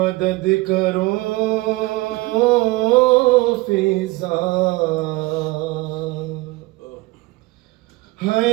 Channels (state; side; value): quieter; left; 21.6 dB